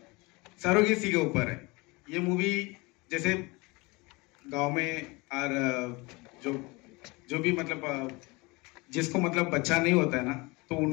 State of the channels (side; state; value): right; quieter; 25.2 dB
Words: सरोगेसी के ऊपर है। ये मूवी जैसे गांव में और जो भी मतलब जिसको मतलब बच्चा नहीं होता है ना, तो